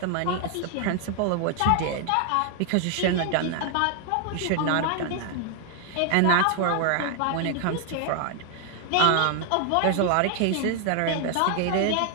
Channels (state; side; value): different; both; correlation 0.00